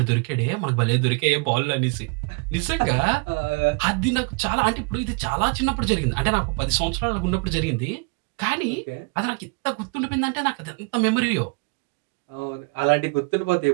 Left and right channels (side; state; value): left; quieter; 31.1 dB